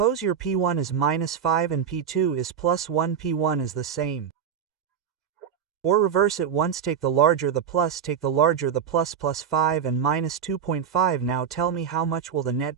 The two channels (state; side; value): quieter; left; 7.8 dB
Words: your P1 is minus 5 and P2 is plus 1. P1 is the same. Or reverse it once, take the larger the plus, take the larger the plus 5 and minus 2.5. Now tell me, how much will the